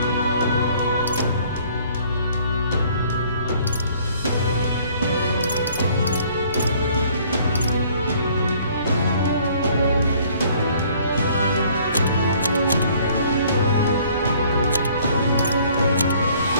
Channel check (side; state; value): both; inverted; correlation -0.58